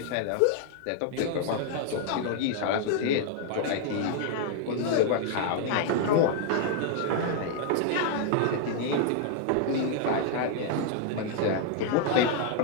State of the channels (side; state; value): both; different; correlation 0.00